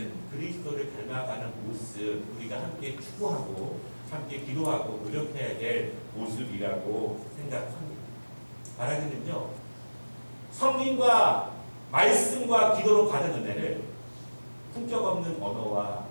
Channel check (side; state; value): both; inverted; correlation -1.00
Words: 그리스도를 닮아가는 모습 우리가 함께 추구하고 함께 기도하고 노력해야 될 모습이라고 생각합니다. 말하자면요, 성경과 말씀과 기도로 받은 은혜를 품격 없는 언어와